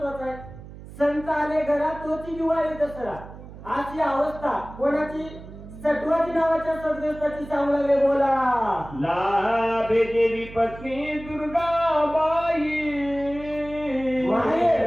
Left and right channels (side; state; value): right; noise; hum, 15 dB below the sound